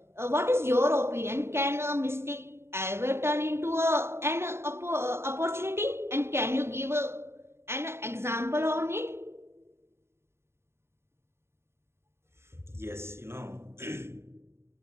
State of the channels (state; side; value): late; left; 0.12 ms